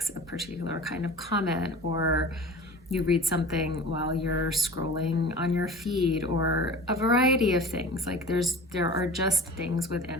a particular kind of comment, or you read something while you're scrolling on your feed, or a variety of things. Like there are just things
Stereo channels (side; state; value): both; normal; correlation 0.39